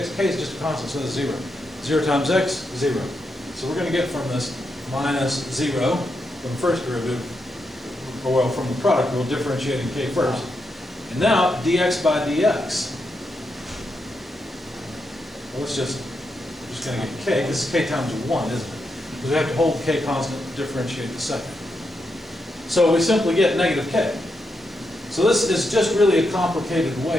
k is just a constant, so it's 0. 0 times x, 0. So we're going to get from this minus 0 from the first derivative, or well, from the product, we'll differentiate in k first. And now, dx by dx. Well, let's just going to get k. This is k times 1, isn't it? Because we have to hold k constant to differentiate the second. So we simply get negative k. So this is just really a complicated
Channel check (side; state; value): both; normal; correlation 0.84